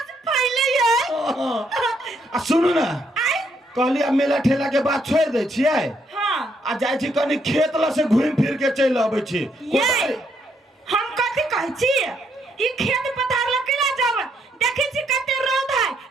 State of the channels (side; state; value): both; normal; correlation 0.73